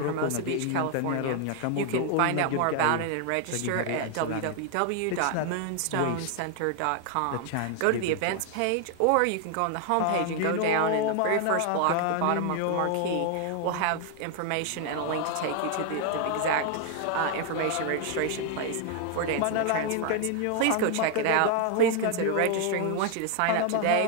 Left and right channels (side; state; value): both; different; correlation 0.00